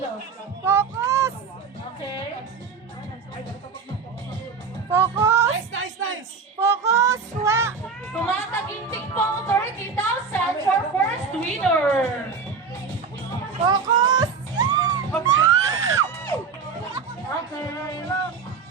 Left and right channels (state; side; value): quieter; left; 5.3 dB